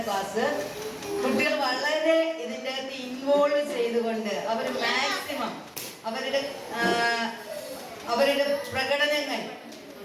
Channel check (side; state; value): both; identical; correlation 1.00